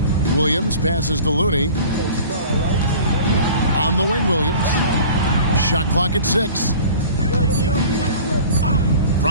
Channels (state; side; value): inverted; both; correlation -0.43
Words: Williams passes to Looney. On the wing, Williams. Shot clock at 6.